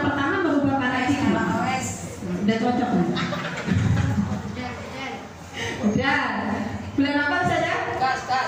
pertama merubah paradigma. Udah cocok nih. Udah. Bulan apa saja?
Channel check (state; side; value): identical; both; correlation 1.00